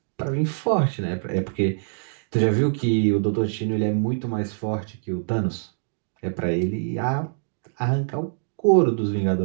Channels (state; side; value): silent; left; digital silence